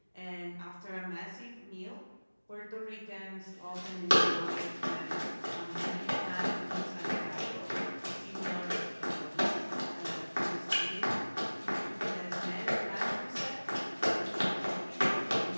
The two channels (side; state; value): both; inverted; correlation -1.00